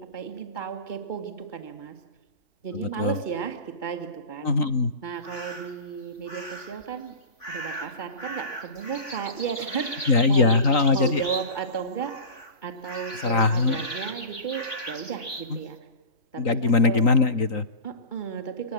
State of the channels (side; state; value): right; late; 3.5 ms